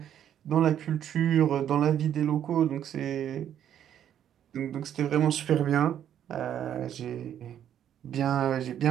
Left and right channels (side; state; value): left; quieter; 10.1 dB